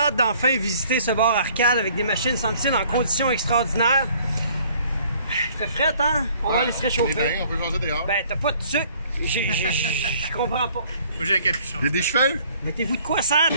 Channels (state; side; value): inverted; both; correlation -0.58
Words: d'enfin visiter ce bar arcade avec des machines semble-t-il en conditions extraordinaires. Il fait frais, hein? On va aller se réchauffer. Bien, on peut changer dehors. Ben, t'as pas de sucre. Je comprends pas. Moi, j'ai un capuchon. J'ai des cheveux? Mettez-vous de quoi ça